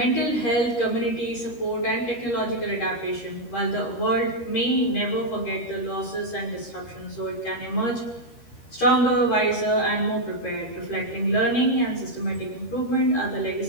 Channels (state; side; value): late; right; 13 ms